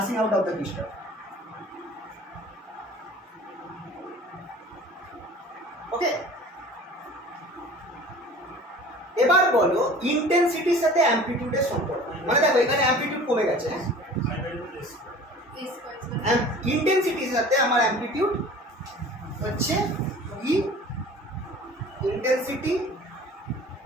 out of the crystal। ওকে, এবার বলো ইন্টেন্সিটির সাথে অ্যামপ্লিটিউডের সম্পর্ক। মানে দেখো এখানে অ্যামপ্লিটিউড কমে গেছে, ইন্টেন্সিটির সাথে আমার অ্যামপ্লিটিউড হচ্ছে ই, intensity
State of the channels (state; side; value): normal; both; correlation 0.44